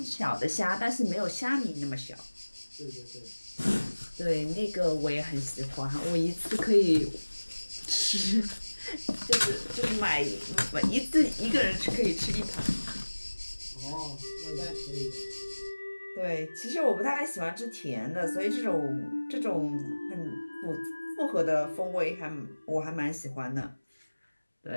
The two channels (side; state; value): both; inverted; correlation -1.00